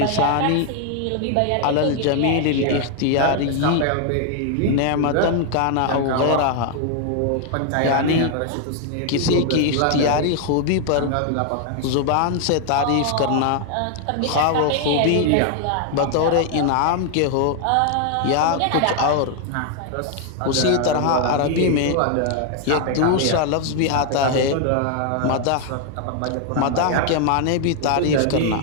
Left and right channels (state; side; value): different; both; correlation 0.00